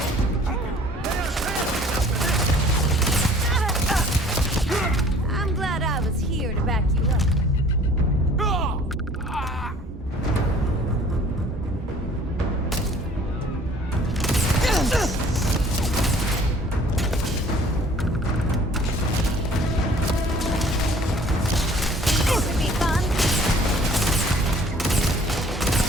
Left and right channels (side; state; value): both; normal; correlation 0.53